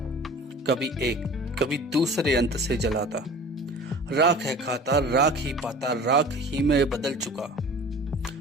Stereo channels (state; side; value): normal; both; correlation 0.42